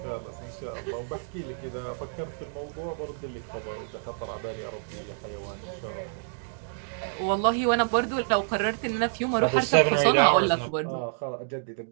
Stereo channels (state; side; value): silent; left; digital silence